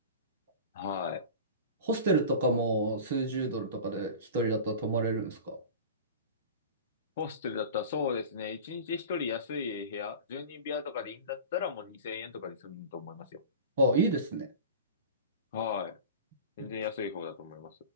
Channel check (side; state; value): both; inverted; correlation -0.34